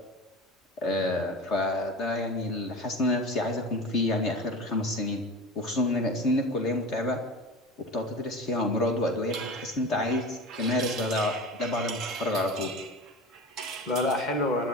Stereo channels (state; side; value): normal; both; correlation 0.32